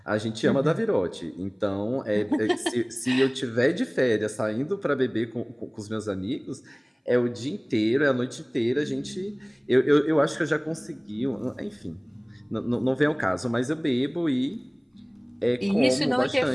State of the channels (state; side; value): identical; both; correlation 1.00